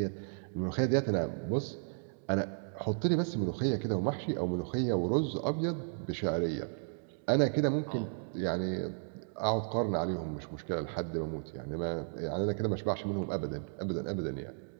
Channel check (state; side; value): silent; left; digital silence